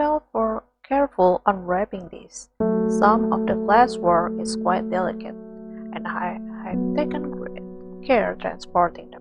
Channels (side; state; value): both; identical; correlation 1.00